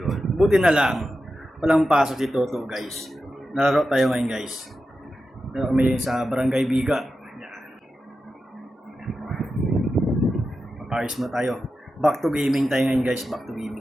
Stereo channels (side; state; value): both; normal; correlation 0.91